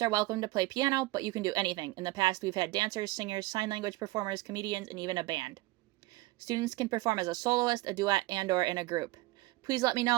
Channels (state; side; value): quieter; left; 19.4 dB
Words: are welcome to play piano, but you can do anything. In the past, we've had dancers, singers, sign language performers, comedians, and even a band. Students can perform as a soloist, a duet, and/or in a group. Please let me